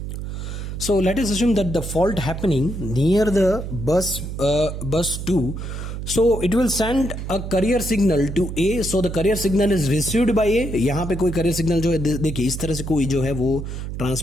So let us assume that the fault happening near the bus 2. So it will send a carrier signal to A. So the carrier signal is received by A. यहाँ पे कोई carrier signal जो है देखिए इस तरह से कोई जो है वो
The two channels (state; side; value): noise; right; hum, 6 dB below the sound